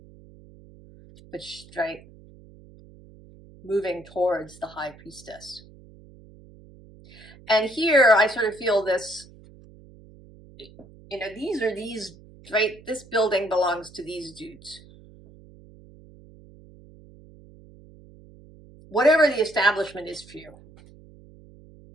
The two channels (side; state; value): right; noise; hum, 22 dB below the sound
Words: but straight moving towards the High Priestess. And here I sort of feel this, you know, these, right? This building belongs to these dudes. Whatever the establishment is for you.